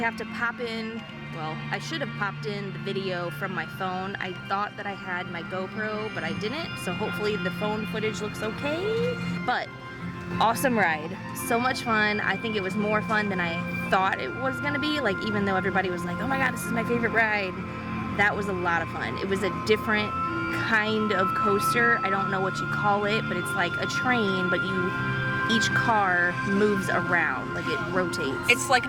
have to pop in, well, I should have popped in the video from my phone. I thought that I had my GoPro, but I didn't, so hopefully the phone footage looks okay. But, awesome ride. So much fun. I think it was more fun than I thought it was gonna be. Like, even though everybody was like, oh my god, this is my favorite ride, that was a lot of fun. It was a different kind of coaster. I don't know what you call it, but it's like a train, but each car moves around, like it rotates. It's like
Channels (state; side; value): identical; both; correlation 1.00